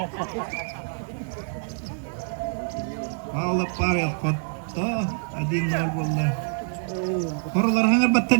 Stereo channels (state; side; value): silent; left; digital silence